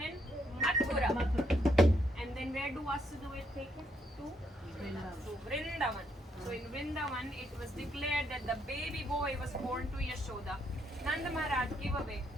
in Mathura. And then where do Vasudeva take him? To Vrindavan. So in Vrindavan, it was declared that the baby boy was born to Yashoda. Nanda Maharaj gave away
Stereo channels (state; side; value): normal; both; correlation 0.74